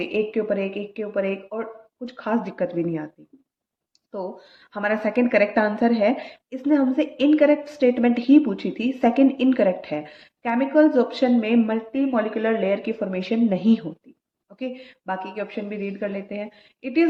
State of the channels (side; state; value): both; identical; correlation 1.00